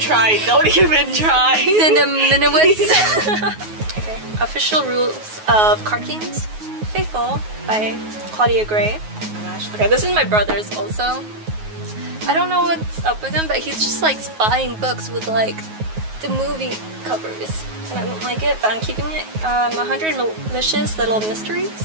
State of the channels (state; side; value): late; left; 9.4 ms